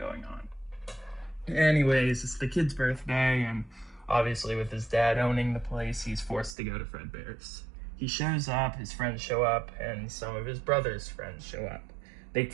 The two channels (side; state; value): left; drops out; at 6.6 s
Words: on. Anyways, it's the kid's birthday, and obviously, with his dad owning the place, he's forced to go to Fredbear's. He shows up, his friends show up, and some of his brother's friends show up. They